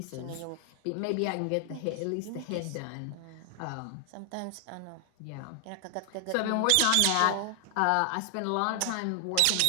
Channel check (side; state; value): both; different; correlation 0.00